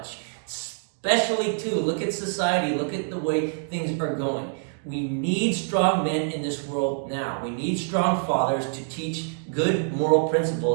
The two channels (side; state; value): left; silent; 61 dB below the other